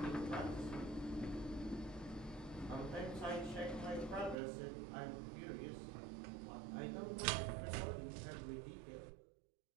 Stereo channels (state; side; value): drops out; left; at 4.4 s